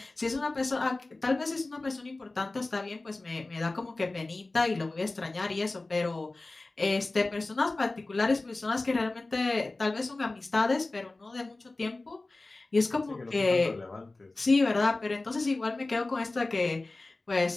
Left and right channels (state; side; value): quieter; right; 3.1 dB